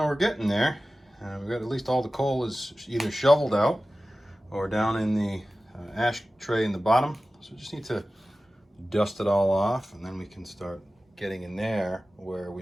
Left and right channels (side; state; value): both; normal; correlation 0.96